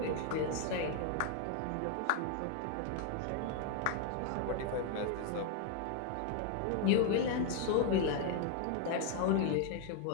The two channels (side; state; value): both; different; correlation 0.00